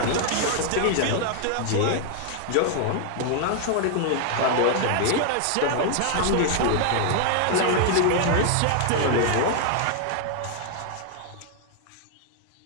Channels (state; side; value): different; both; correlation 0.00